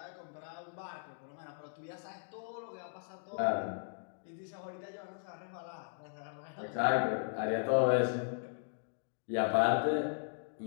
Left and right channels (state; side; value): silent; right; digital silence